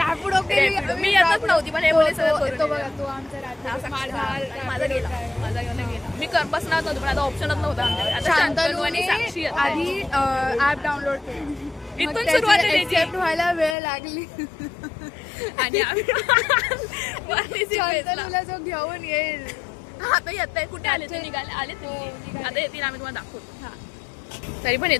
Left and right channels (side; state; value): right; drops out; at 13.8 s